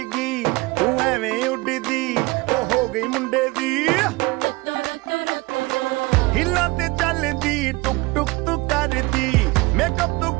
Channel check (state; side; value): quieter; left; 23.1 dB